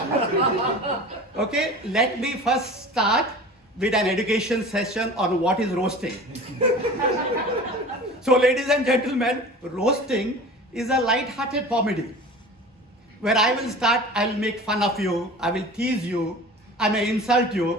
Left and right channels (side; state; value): both; normal; correlation 0.38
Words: okay, let me first start with an education session on what is roasting. So, ladies and gentlemen, roasting is a light-hearted comedy where I will start, I will make fun of you, I will tease you, I may insult